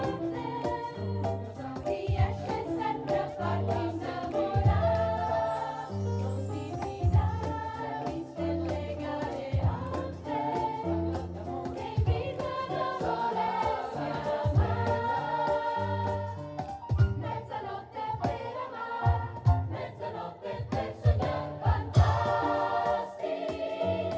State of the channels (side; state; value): both; identical; correlation 1.00